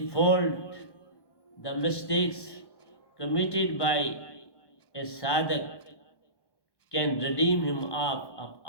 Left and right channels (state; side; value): late; right; 1.1 ms